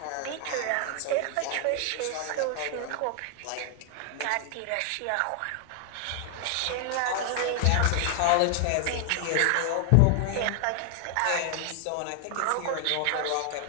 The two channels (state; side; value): different; both; correlation 0.00